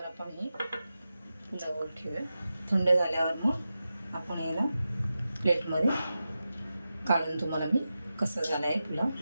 आपण हे पुलावर ठेवूया. थंड झाल्यावर मग आपण याला प्लेटमध्ये काढून तुम्हाला मी कसं झालं आहे पुलाव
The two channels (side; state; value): both; inverted; correlation -0.92